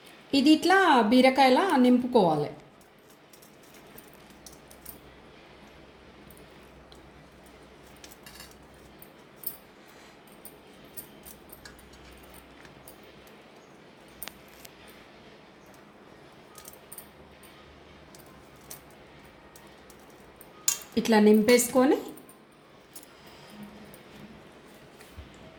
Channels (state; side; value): identical; both; correlation 1.00